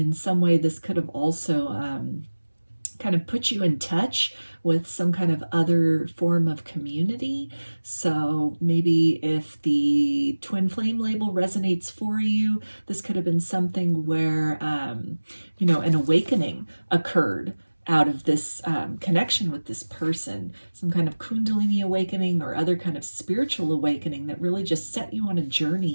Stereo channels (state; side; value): inverted; both; correlation -1.00